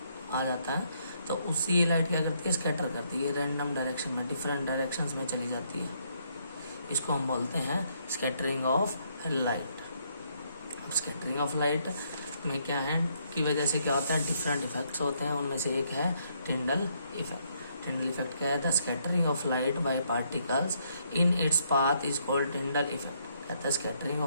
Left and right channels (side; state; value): both; inverted; correlation -0.72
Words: आ जाता है, तो उसी ये लाइट क्या करती है, स्कैटर करती है, रैंडम डायरेक्शन में, डिफरेंट डायरेक्शंस में चली जाती है। इसको हम बोलते हैं स्कैटरिंग ऑफ लाइट। अब स्कैटरिंग ऑफ लाइट में क्या है की वजह से क्या होता है, डिफरेंट इफेक्ट्स होते हैं, उनमें से एक है टिंडल इफेक्ट। टिंडल इफेक्ट क्या है, the scattering of light by particles in its path is called Tyndall effect. कहता है स्कैटरिंग